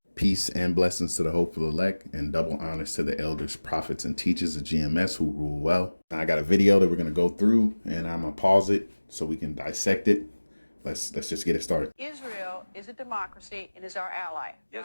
Peace and blessings to the hopeful elect, and double honors to the elders, prophets, and teachers of GMS who rule well. Now, I got a video that we're going to go through, and I'm going to pause it so we can dissect it. Let's just get it started. Israel is a democracy and is our ally. Yes,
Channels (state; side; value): inverted; both; correlation -1.00